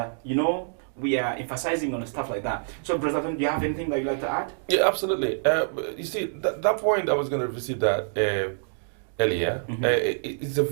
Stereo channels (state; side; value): silent; left; digital silence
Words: emphasizing on stuff like that. So, Brother Tom, do you have anything that you'd like to add? Yeah, absolutely. You see, that point I was going to visit that earlier. It's a